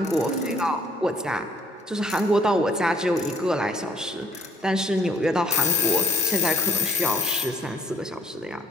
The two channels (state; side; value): normal; both; correlation 0.64